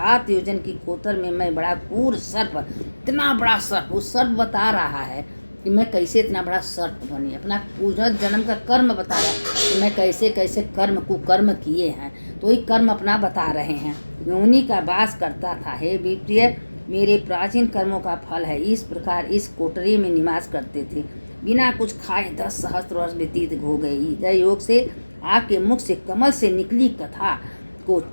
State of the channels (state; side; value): inverted; both; correlation -1.00